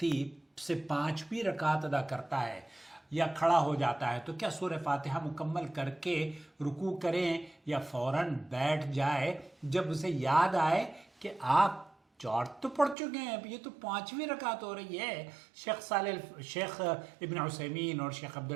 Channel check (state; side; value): drops out; left; at 13.0 s